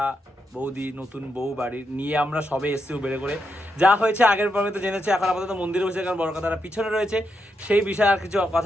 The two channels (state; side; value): normal; both; correlation 0.83